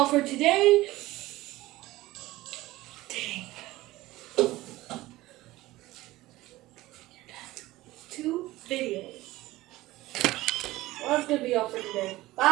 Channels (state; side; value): quieter; left; 17.8 dB